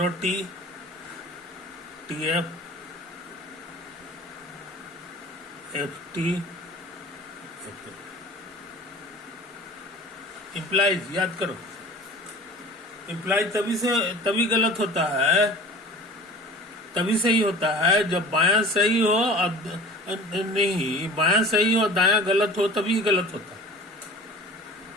T T F F T implies, याद करो इम्प्लाइज तभी गलत होता है, तभी सही होता है जब बायां सही हो और नहीं, बायां सही हो दायां गलत हो तभी गलत होता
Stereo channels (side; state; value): both; normal; correlation 0.41